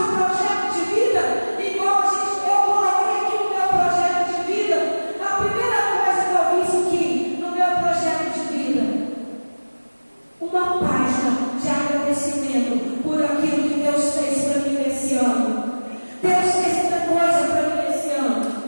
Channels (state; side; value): inverted; both; correlation -1.00